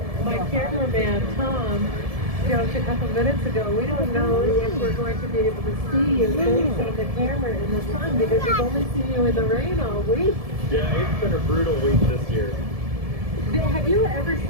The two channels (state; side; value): late; left; 1.7 ms